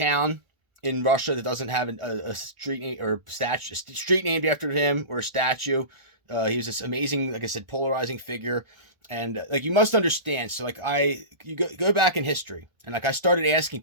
in Russia that doesn't have a street or street named after him or a statue. He was this amazing, like I said, polarizing figure. And like you must understand, so like you go back in history, and like I started asking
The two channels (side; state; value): left; late; 1.4 ms